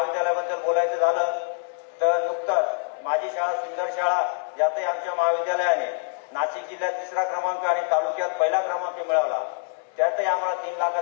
बोलायचं झालं तर नुकताच माझी शाळा सुंदर शाळा यातही आमच्या महाविद्यालयाने नाशिक जिल्ह्यात 3रा क्रमांक आणि तालुक्यात 1ला क्रमांक मिळवला। त्यातही आम्हाला 3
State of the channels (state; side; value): silent; right; 60 dB below the other